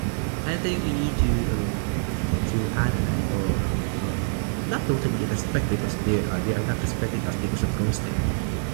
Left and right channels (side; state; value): left; silent; digital silence